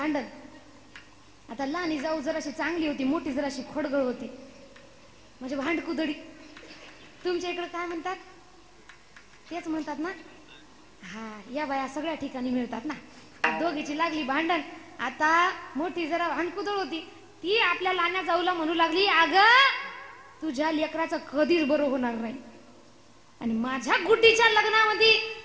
आता लहानी जाऊ जराशी चांगली होती, मोठी जराशी खोडगळ होती, म्हणजे भांडकुदडी. तुमच्या इकडे काय म्हणतात, तेच म्हणतात ना. हा, या बाया सगळ्या ठिकाणी मिळतात ना. दोघीची लागली भांडण. आता मोठी जरा भांडकुदळ होती, ती आपल्या लहान्या जाऊला म्हणू लागली, अगं तुझ्या लेकराचं कधीच बरं होणार नाही, आणि माझ्या गुड्डीच्या लग्नामध्ये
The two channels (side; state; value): both; identical; correlation 1.00